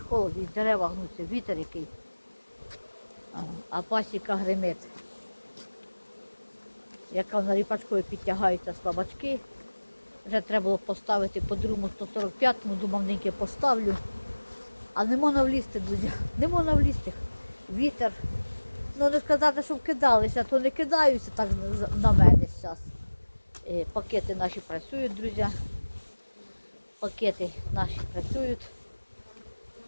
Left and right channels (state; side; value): inverted; both; correlation -1.00